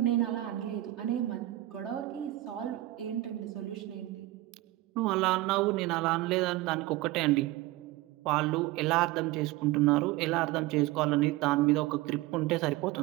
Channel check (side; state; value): left; quieter; 17.3 dB